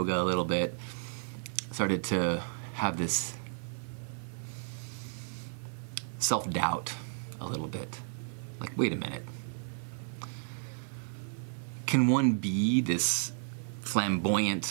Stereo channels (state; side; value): silent; left; 56 dB below the other